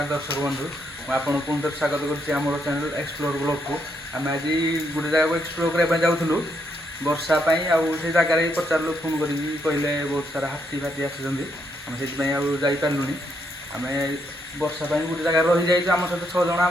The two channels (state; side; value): normal; both; correlation 0.77